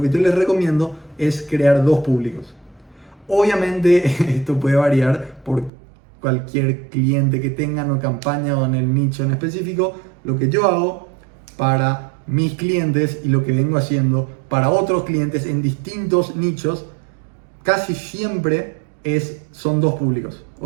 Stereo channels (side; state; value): left; drops out; at 5.7 s